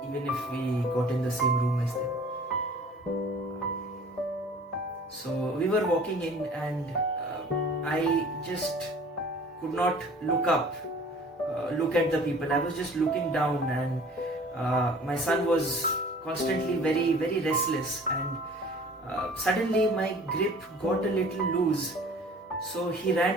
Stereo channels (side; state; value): both; normal; correlation 0.48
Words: even if we got in the same room as them. So we were walking in and I just could not look up, look at the people. I was just looking down and my son was constantly very, very restless, and suddenly my grip got a little loose. So he